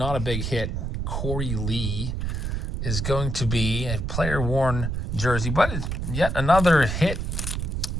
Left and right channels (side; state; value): right; noise; rumble, 2 dB below the sound